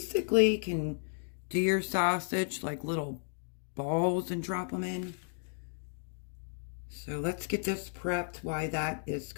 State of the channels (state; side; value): silent; right; digital silence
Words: can do your sausage like little balls and drop them in. So let's get this prepped while that is